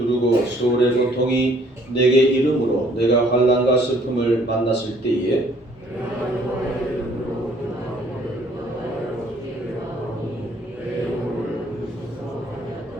소울의 고통이 내게 이름으로 내가 환난과 슬픔을 만났을 때에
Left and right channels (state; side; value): normal; both; correlation 0.61